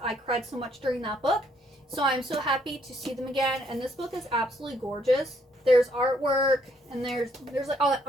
I cried so much during that book, so I'm so happy to see them again, and this book is absolutely gorgeous. There's artwork, and there's like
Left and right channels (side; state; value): both; normal; correlation 0.69